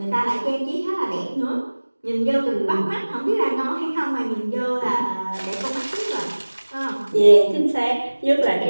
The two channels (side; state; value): both; inverted; correlation -1.00